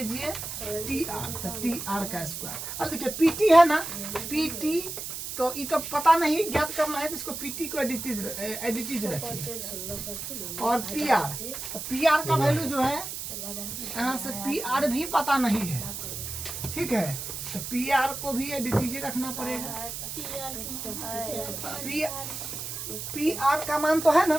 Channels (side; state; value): right; noise; hiss, 7 dB below the sound